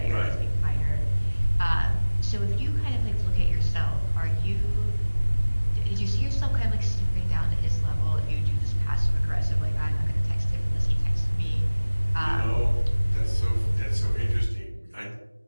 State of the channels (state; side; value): inverted; both; correlation -1.00